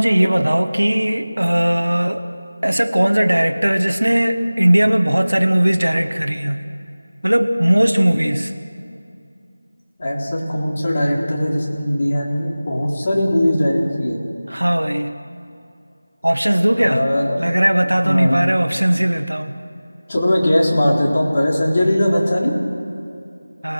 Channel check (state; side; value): inverted; both; correlation -0.98